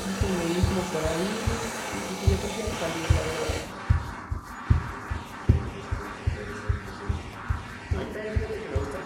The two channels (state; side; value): identical; both; correlation 1.00